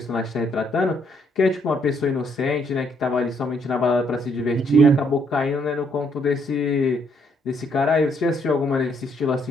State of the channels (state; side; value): normal; both; correlation 0.70